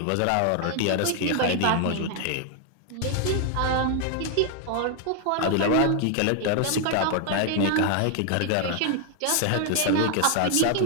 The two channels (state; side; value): different; both; correlation 0.00